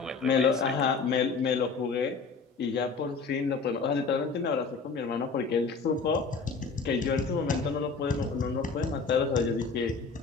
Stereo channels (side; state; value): right; quieter; 4.8 dB